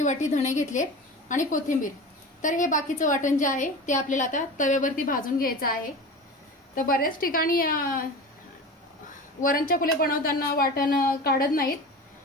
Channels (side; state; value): both; normal; correlation 0.32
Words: वाटी धणे घेतले आणि कोथिंबीर। तर हे बाकीचं वाटण जे आहे ते आपल्याला आता तव्यावरती भाजून घ्यायचं आहे। तर बऱ्याच ठिकाणी वरण चकुल्या बनवताना वाटण काढत नाहीत,